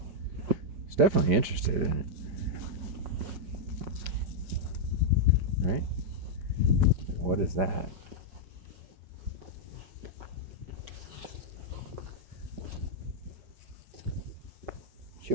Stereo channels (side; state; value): left; late; 5.0 ms